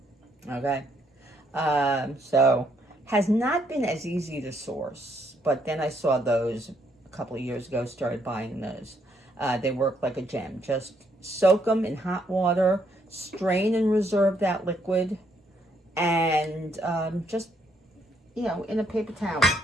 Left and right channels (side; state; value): both; normal; correlation 0.72